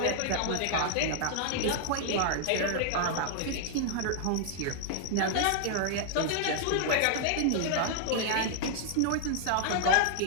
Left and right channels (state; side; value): different; both; correlation 0.00